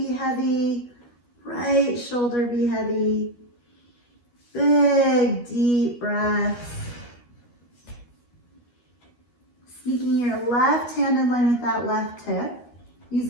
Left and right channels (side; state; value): right; late; 12 ms